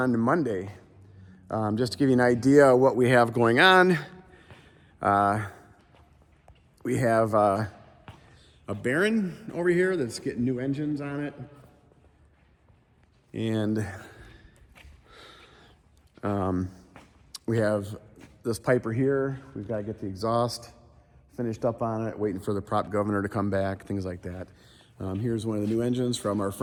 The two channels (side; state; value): both; identical; correlation 1.00